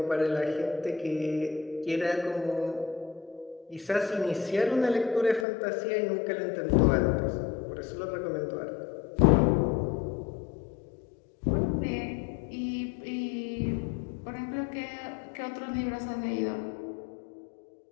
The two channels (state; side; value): drops out; right; at 5.5 s